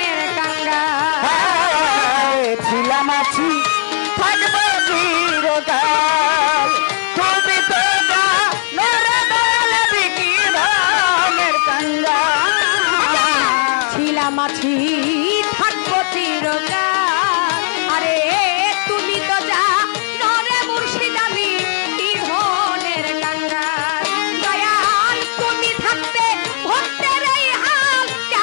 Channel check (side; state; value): right; silent; digital silence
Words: কাঙ্গা। ছিলাম আছি থাকবো চিরকাল তুমি তো যা নরে দয়াল আমি কি ধনের কাঙ্গা ছিলাম আছি থাকবো চিরকাল আরে তুমি তো যা নরে মুর্শিদ আমি কি ধনের কাঙ্গা। দয়াল তুমি থাকতে ভক্তের এই হাল